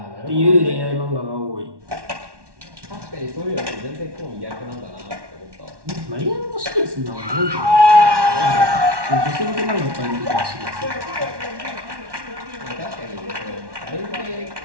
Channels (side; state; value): left; late; 1.1 ms